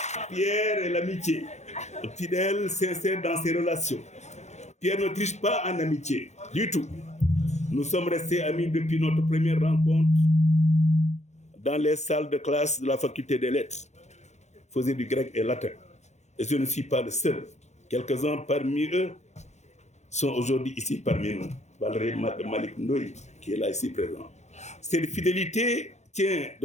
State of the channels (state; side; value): late; right; 0.33 ms